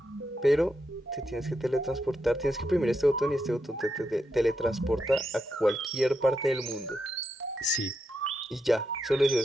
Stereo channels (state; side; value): normal; both; correlation 0.83